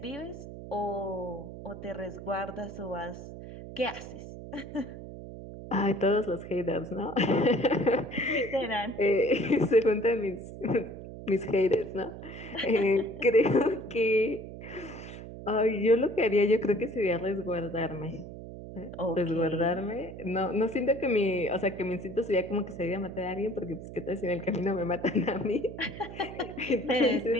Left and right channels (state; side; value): noise; right; hum, 12 dB below the sound